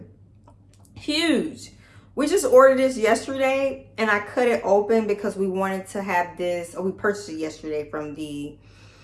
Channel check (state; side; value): identical; both; correlation 1.00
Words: Huge. We just ordered this yesterday, and I cut it open because we wanted to have this, or we purchased it yesterday from the